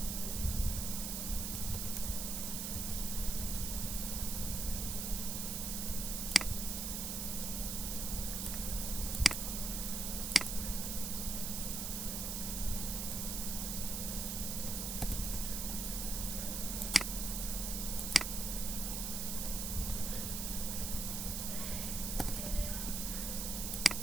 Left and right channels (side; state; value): right; noise; hiss, 2 dB below the sound